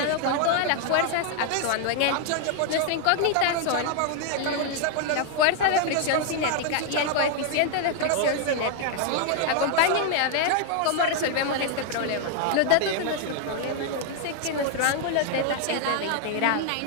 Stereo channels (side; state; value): both; different; correlation 0.00